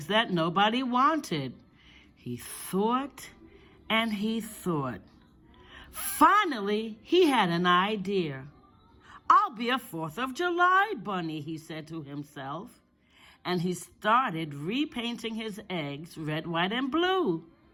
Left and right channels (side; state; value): both; identical; correlation 1.00